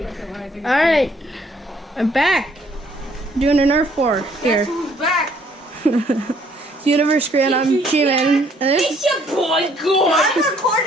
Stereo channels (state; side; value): normal; both; correlation 0.63